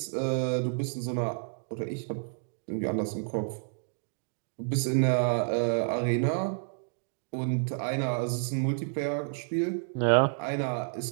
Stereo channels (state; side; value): silent; left; digital silence